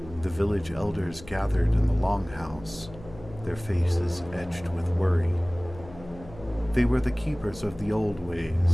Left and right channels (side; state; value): left; noise; hum, 18 dB below the sound